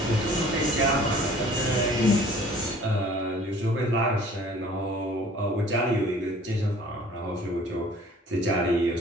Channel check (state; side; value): normal; both; correlation 0.51